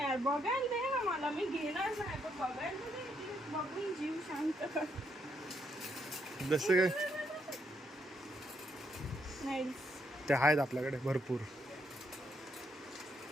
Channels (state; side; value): normal; both; correlation 0.76